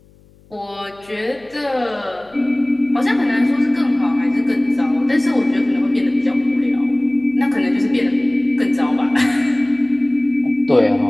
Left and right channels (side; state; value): left; noise; hum, 29 dB below the sound